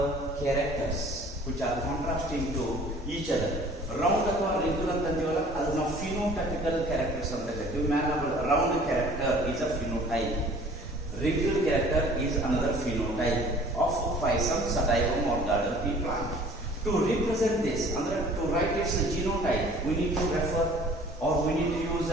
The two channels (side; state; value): both; normal; correlation 0.50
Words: characters which are contrasting to each other. Round ಅಥವಾ ರಿಂಕಲ್ ಅಂತ ಅಂತೀವಲ್ಲ ಅದು ನಾವು ಫಿನೋಟೈಪಿಕಲ್ ಕ್ಯಾರೆಕ್ಟರ್ಸ್ ಅಂತ ಹೇಳ್ತೀವಿ. Round character is a phenotype, wrinkled character is another phenotype of Physum sativum or garden pea plant. To represent this, to write its genotype, we need to refer or we need to use